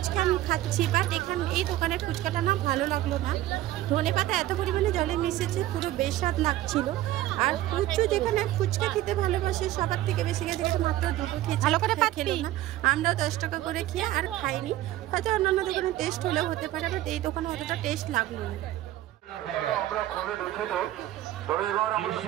আমি খাচ্ছি, বাট এখানে এই দোকানের ফুচকাটা না ভালো লাগলো না। ধনেপাতা এত পরিমাণে জলে মিশেছে, পুরো বেস্বাদ লাগছিল। আর কুচু যেখানে ফুচকা খেতে ভালোবাসে সবার থেকে বেশি গেছে, মাত্র 2টো খেয়েছে, ভালো করে খেলো না। আমরাও 10 টাকা করে খেয়ে আর খাইনি। হয়তো অন্যান্য দোকানে টেস্ট হলেও হতে পারে, বাট এই দোকানে অতটা টেস্ট লাগলো না। আমরা খুলে দেখে দেব। তবে এবার আমরা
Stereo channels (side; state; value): left; quieter; 14.8 dB